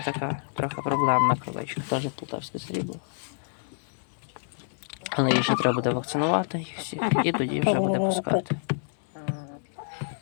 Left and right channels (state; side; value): silent; right; digital silence